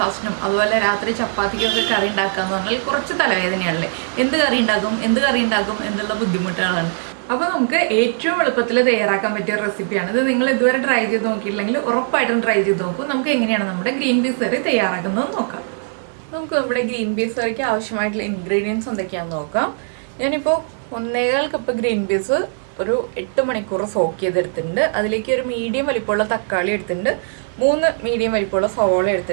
അതുപോലെ രാത്രി ചപ്പാത്തിക്കൊക്കെ കറി ഉണ്ടാക്കാന്ന് പറഞ്ഞാൽ കുറച്ച് തലവേദനയാണല്ലേ. എന്ത് കറി ഉണ്ടാക്കും എന്നുള്ള ബുദ്ധിമുട്ടുകളാണ്. അപ്പോൾ നമുക്ക് ഏറ്റവും എളുപ്പത്തിൽ തയ്യാറാക്കാൻ പറ്റിയ റെസിപ്പിയാണ് ഇത്. നിങ്ങൾ ഇതുവരെ ട്രൈ ചെയ്ത് നോക്കിയില്ലെങ്കിൽ ഉറപ്പായിട്ടും ട്രൈ ചെയ്ത് നോക്കും. നമുക്ക് എങ്ങനെയാണ് നമ്മുടെ ഗ്രീൻ പീസ് കറി തയ്യാറാക്കുന്നത് നോക്കാം. നമുക്ക് നമ്മുടെ ഗ്രീൻ പീസ് കറിക്ക് ആവശ്യമായിട്ടുള്ള ഇൻഗ്രീഡിയൻസ് എന്തൊക്കെയാണെന്ന് നോക്കാം. ഞാനിപ്പോൾ 1.25 കപ്പ് ഗ്രീൻ പീസ് ഒരു 8 മണിക്കൂർ സോക്ക് ചെയ്തെടുത്തിട്ടുണ്ട്. അതിലേക്ക് ഒരു മീഡിയം വലിപ്പമുള്ള തക്കാളി എടുത്തിട്ടുണ്ട്, 3 മീഡിയം വലിപ്പമുള്ള സവോള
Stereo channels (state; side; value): silent; left; digital silence